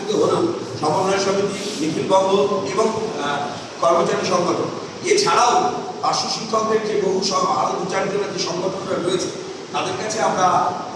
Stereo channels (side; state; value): both; identical; correlation 1.00